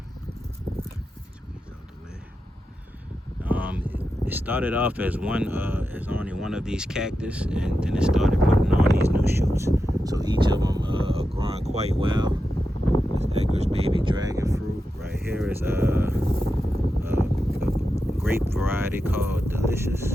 It started off as only one of these cactus, and then it started putting on these new shoots. So each of them are growing quite well. This Edgar's baby dragon fruit right here is a grape variety called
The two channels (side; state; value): both; normal; correlation 0.89